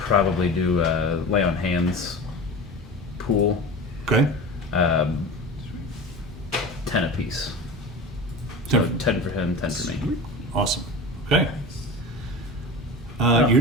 do a lay on hands pool. Okay. 10 apiece. So 10 for him, 10 for me. Awesome. Okay. Oh,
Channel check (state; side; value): normal; both; correlation 0.31